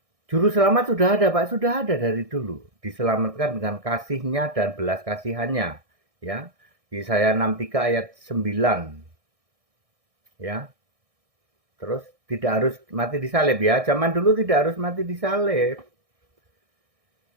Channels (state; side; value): late; left; 1.6 ms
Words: Juru selamat sudah ada Pak, sudah ada dari dulu. Diselamatkan dengan kasihnya dan belas kasihannya. Ya, Yesaya 63 ayat 9. Ya, terus tidak harus mati disalib ya. Zaman dulu tidak harus mati disalib.